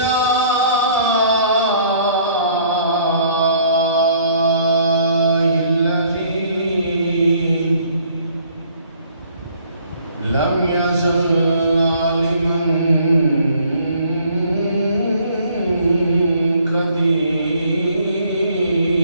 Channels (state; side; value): inverted; both; correlation -0.60